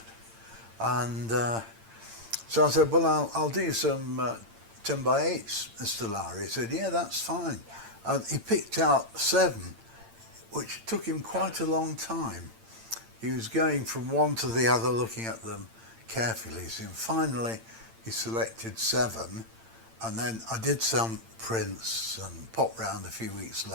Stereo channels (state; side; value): late; left; 8.8 ms